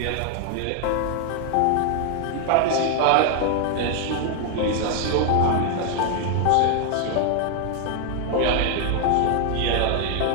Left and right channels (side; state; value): both; different; correlation 0.00